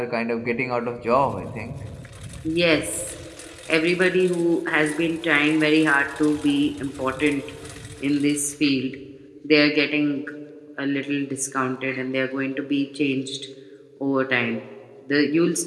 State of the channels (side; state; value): both; identical; correlation 1.00